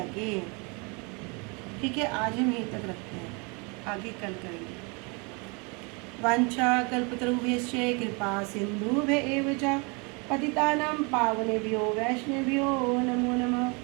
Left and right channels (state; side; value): quieter; left; 31.2 dB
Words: ठीक है, आज हम यहीं तक रखते हैं, आगे कल करेंगे। वांछा कल्पतरुभ्यश्च कृपा सिन्धुभ्येव च पतितानां पावनेभ्यो वैष्णवेभ्यो नमो नमः।